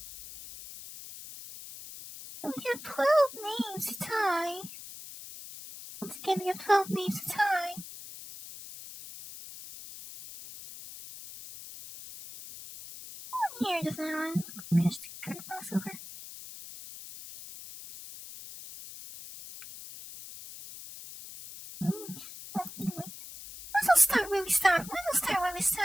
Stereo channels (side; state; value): left; noise; hiss, 13 dB below the sound